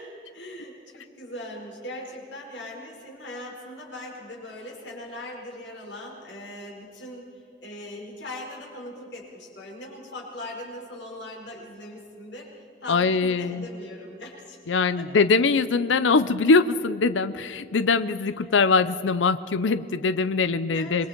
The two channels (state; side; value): quieter; right; 3.8 dB